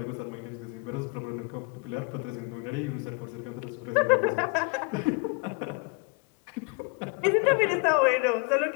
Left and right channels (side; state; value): right; quieter; 31.8 dB